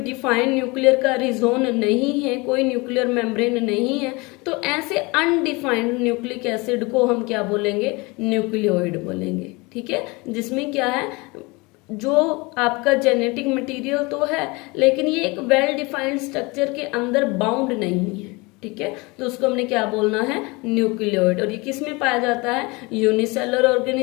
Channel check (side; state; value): right; quieter; 25.5 dB